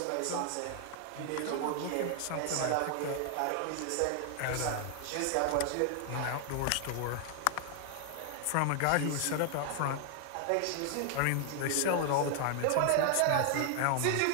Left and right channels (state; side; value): different; both; correlation 0.00